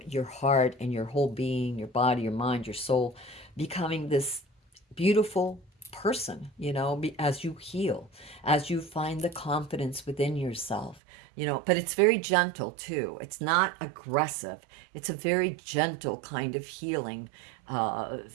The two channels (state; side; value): drops out; left; at 11.0 s